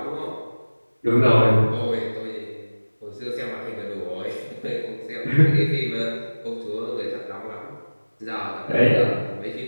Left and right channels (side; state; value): both; inverted; correlation -1.00